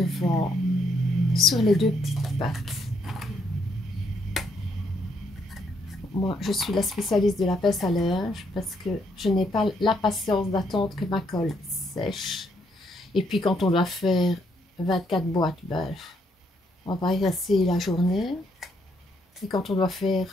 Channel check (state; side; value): normal; both; correlation 0.73